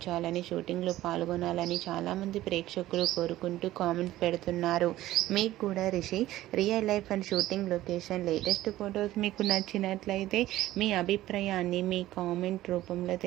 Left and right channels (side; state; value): left; quieter; 15.2 dB